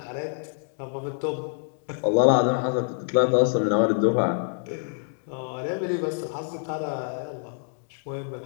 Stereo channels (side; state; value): right; silent; digital silence